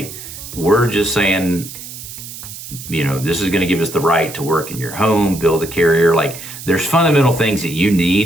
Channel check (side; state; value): right; noise; hiss, 12 dB below the sound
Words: we're just saying, you know, this is going to give us the right to work in your home, build a carrier. Like, there's fundamental things that you